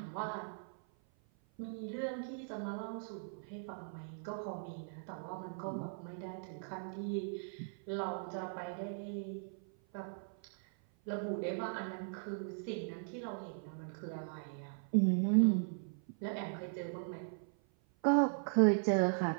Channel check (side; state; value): left; silent; 52 dB below the other